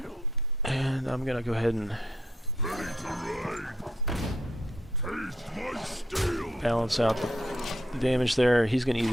And I'm gonna go ahead and balance out the damage there. He's gonna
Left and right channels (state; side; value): normal; both; correlation 0.74